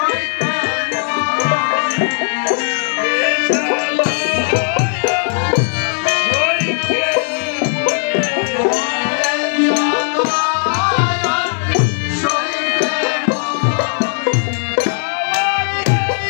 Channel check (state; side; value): silent; right; digital silence